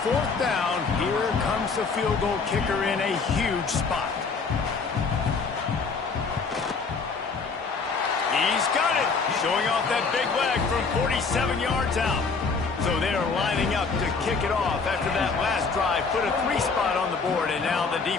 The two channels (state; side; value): quieter; right; 4.8 dB